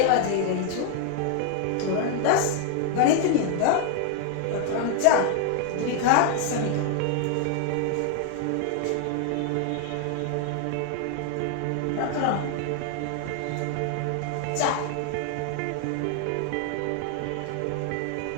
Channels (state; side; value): different; both; correlation 0.00